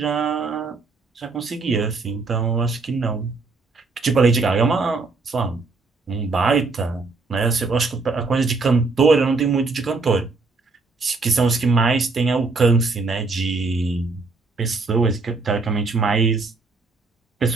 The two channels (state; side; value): quieter; left; 3.9 dB